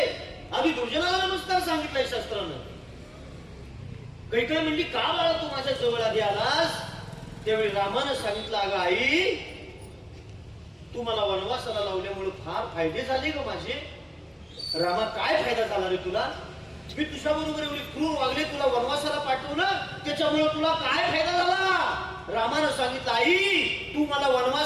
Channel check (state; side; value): identical; both; correlation 1.00